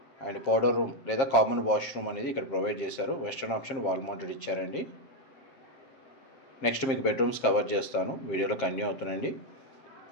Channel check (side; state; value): right; late; 7.4 ms